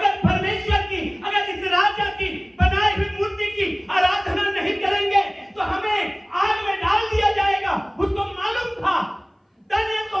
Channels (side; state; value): both; identical; correlation 1.00